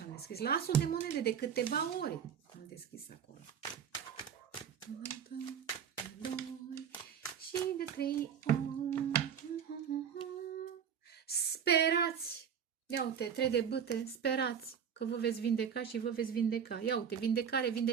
deschis. La asul de monede de câteva ori am deschis acolo. De 2 și de 3 ori. Sperați! Ia uite, 3 de bâte, sperați că vă veți vindeca și vă veți vindeca. Ia uite, vindecare,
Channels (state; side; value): quieter; left; 7.9 dB